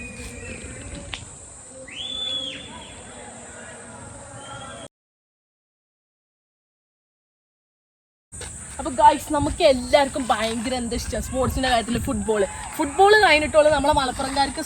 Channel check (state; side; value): identical; both; correlation 1.00